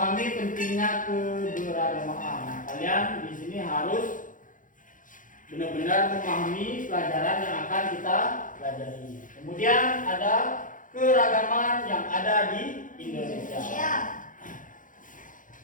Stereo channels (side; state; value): right; late; 0.38 ms